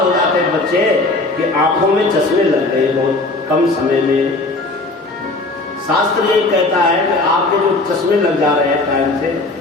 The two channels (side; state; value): right; quieter; 3.1 dB